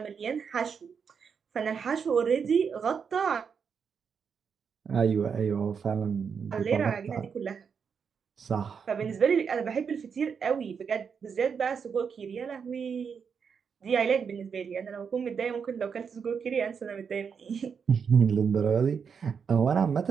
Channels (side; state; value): left; quieter; 6.4 dB